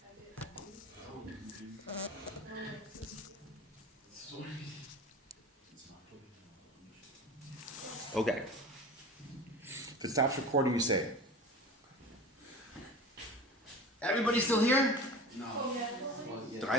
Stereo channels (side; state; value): both; normal; correlation 0.35